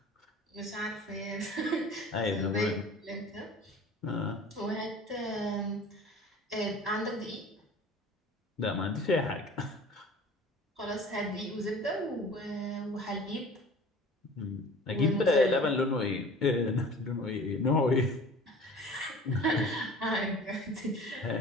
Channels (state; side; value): normal; both; correlation 0.43